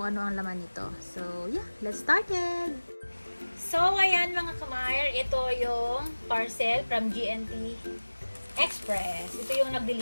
ano ang laman nito. So, yeah, let's start it! So, ayan mga kamay, ito yung parcel from GNT Express. Ito yung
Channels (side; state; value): both; inverted; correlation -1.00